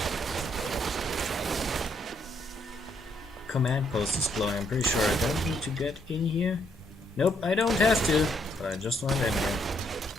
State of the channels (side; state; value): both; normal; correlation 0.73